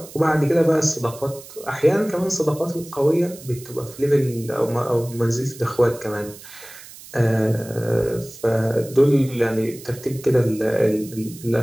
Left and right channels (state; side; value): noise; right; hiss, 18 dB below the sound